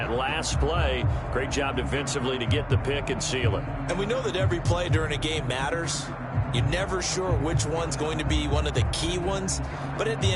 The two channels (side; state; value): both; identical; correlation 1.00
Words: last play. Great job defensively to get the pick and seal it. And we know that every play during a game matters. You're never sure which one's going to be one of the key ones. But at the